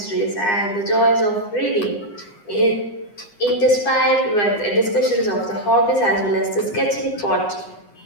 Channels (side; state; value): right; late; 9.7 ms